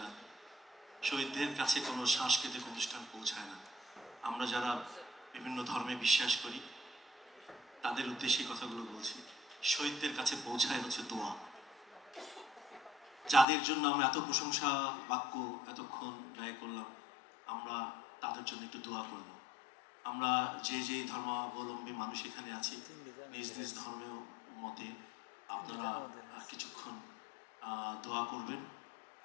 না, শহীদদের কাছে কোনো সাংস্কৃতিক অনুষ্ঠান পৌঁছায় না। আমরা যারা বিভিন্ন ধর্মে বিশ্বাস করি তাদের উদ্দেশ্যে কথাগুলো বলছি। শহীদদের কাছে পৌঁছায় হচ্ছে দোয়া। যাদের জন্য আমরা এত প্রশংসা বাক্য এতক্ষণ ব্যয় করলাম, আমরা তাদের জন্য একটু দোয়া করব। আমরা যে যে ধর্মাবলম্বী মানুষ এখানে আছি, নিজ নিজ ধর্মের মতে আপনারা কিছুক্ষণ দোয়া করবেন।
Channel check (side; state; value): right; drops out; at 13.5 s